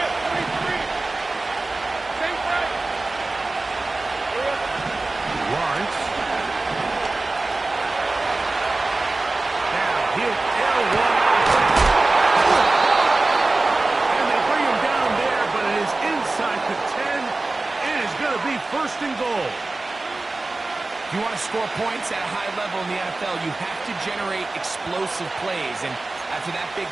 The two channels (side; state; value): left; quieter; 3.2 dB